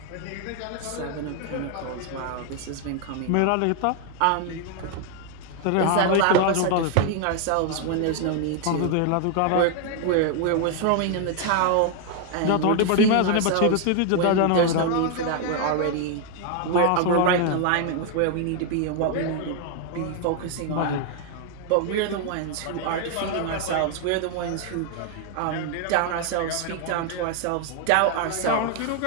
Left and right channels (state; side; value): different; both; correlation 0.00